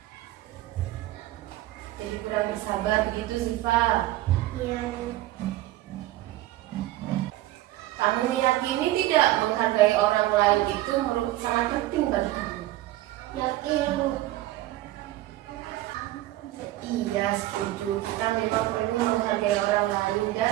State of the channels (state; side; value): quieter; left; 16.0 dB